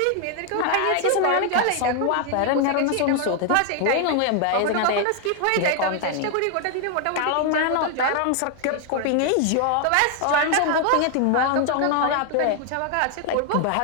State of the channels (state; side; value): different; both; correlation 0.00